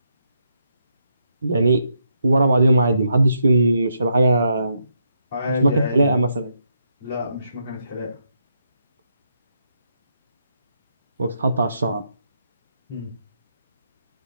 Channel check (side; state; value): both; inverted; correlation -0.79